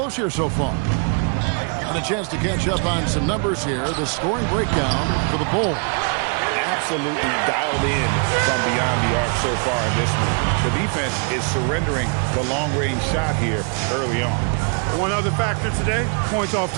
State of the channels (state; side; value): quieter; left; 39.5 dB